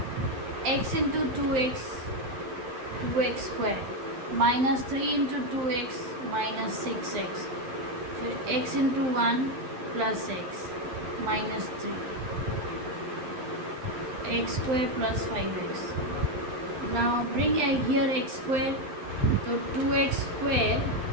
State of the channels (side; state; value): left; late; 12 ms